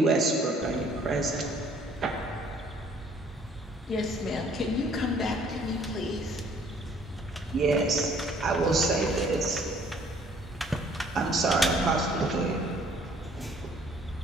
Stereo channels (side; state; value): both; normal; correlation 0.59